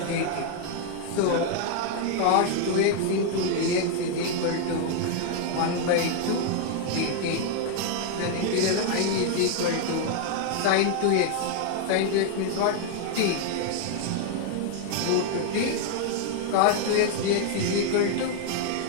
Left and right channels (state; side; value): different; both; correlation 0.00